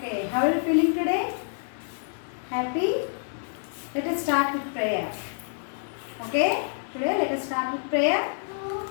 how are you feeling today? Happy? Let us start with prayer. Okay, today let us start with prayer.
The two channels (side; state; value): right; silent; digital silence